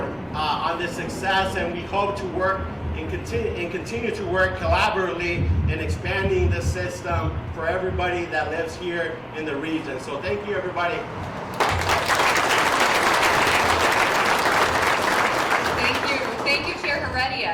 on this success, and we hope to work and continue to work collaboratively in expanding the system for everybody that lives here in the region. So thank you, everybody. Thank you, Chair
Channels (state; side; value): identical; both; correlation 1.00